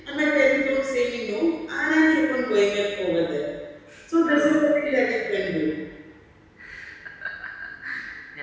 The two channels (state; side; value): identical; both; correlation 1.00